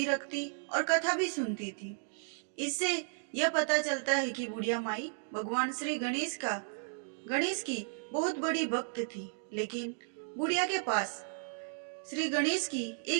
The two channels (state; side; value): silent; left; digital silence